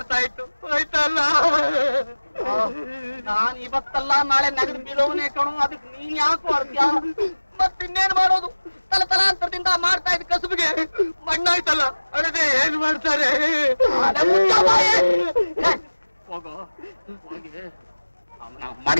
ಇತ್ತು, ಹೋಯ್ತಲ್ಲ. ನಾನ್ ಇವತ್ತಲ್ಲ ನಾಳೆ ನೆಗೆದು ಬೀಳೋವನೇ ಕಣು. ಅದಕ್ಕೆ ನೀನ್ ಯಾಕೆ ಮಾಡ್ತೀಯ? ಮತ್ತಿನ್ನೇನ್ ಮಾಡೋದು? ತಲಾಂತರದಿಂದ ಮಾಡ್ತಾ ಇದ್ದ ಕಸುಬಿಗೆ ಮಣ್ಣಾಯ್ತಲ್ಲ, ಅದೇ ಏನ್ ಮಾಡ್ತಾರೆ? ಹೋಗೋ ಹೋಗಿ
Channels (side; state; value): both; inverted; correlation -1.00